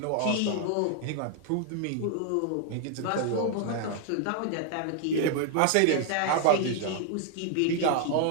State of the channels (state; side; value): different; both; correlation 0.00